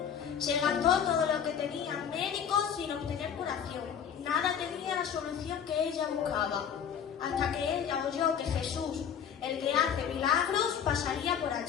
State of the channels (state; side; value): quieter; right; 8.1 dB